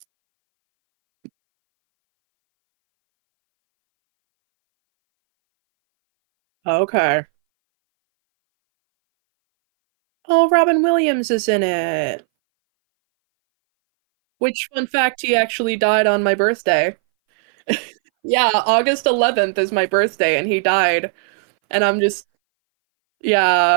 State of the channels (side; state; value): left; silent; 62 dB below the other